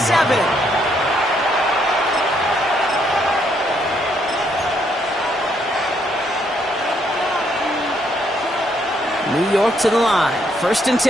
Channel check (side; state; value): both; normal; correlation 0.72